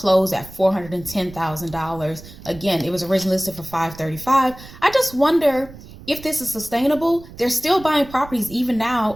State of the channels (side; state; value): right; noise; rumble, 17 dB below the sound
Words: at $410,000. Again, it was originally listed for $535,000. I just wonder if this is sustainable. They're still buying properties even now.